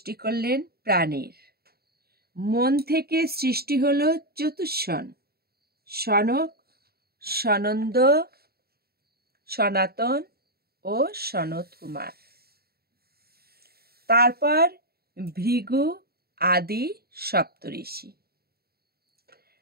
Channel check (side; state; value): left; late; 0.45 ms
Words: করলেন প্রাণীর। মন থেকে সৃষ্টি হলো চতুষ্ষণ: সনক, সনন্দ, সনাতন ও সনত কুমার। তারপর ভৃগু আদি সপ্তঋষি।